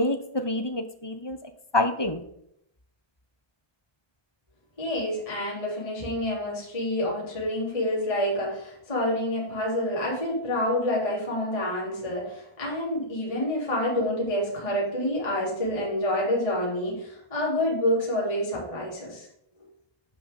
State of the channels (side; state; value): right; late; 1.2 ms